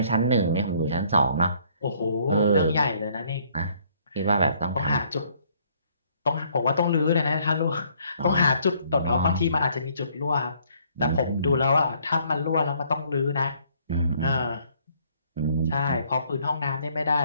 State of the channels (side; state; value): both; inverted; correlation -0.64